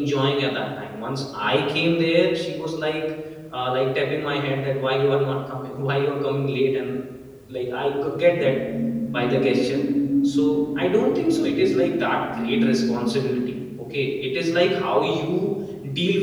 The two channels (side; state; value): both; identical; correlation 1.00